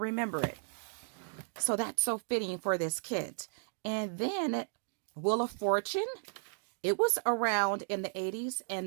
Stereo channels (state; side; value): silent; left; digital silence